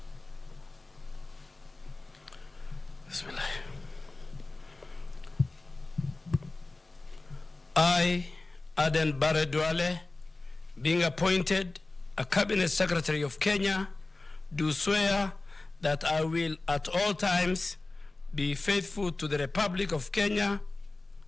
I, Aden Bare Duale, being appointed a Cabinet Secretary of Kenya, do swear that I will at all times be faithful to the Republic of Kenya,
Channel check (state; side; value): quieter; right; 3.2 dB